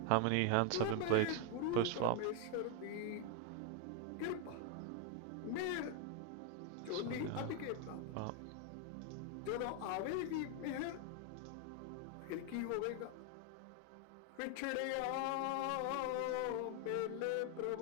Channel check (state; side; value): different; both; correlation 0.01